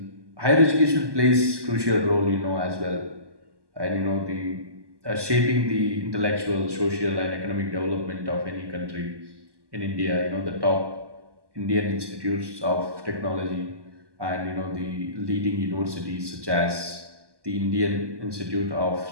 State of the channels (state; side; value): late; left; 1.1 ms